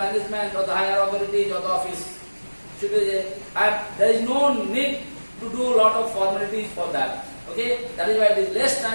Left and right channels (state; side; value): inverted; both; correlation -1.00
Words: or the higher authorities or the office. There is no need to do a lot of formalities for that. Okay, that is why it is less